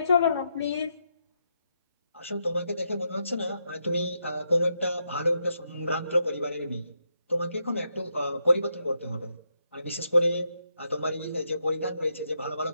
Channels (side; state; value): both; inverted; correlation -0.81